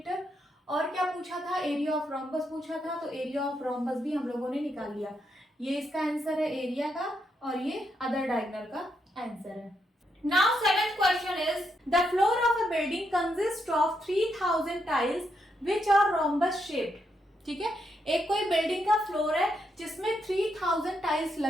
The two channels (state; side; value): normal; both; correlation 0.80